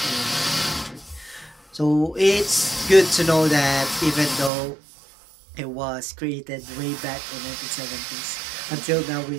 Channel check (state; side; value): drops out; left; at 4.5 s